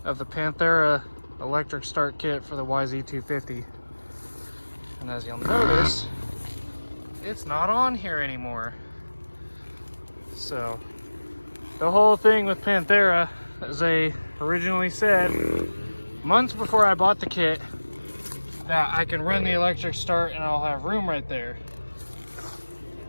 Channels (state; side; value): inverted; both; correlation -1.00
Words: of the Panthera electric start kit for the YZ250. And as you'll notice, it's not on here anymore. So the whole thing with Panthera, as they originally said, months before I bought the kit, that I can run the electric start and I'll have room right there.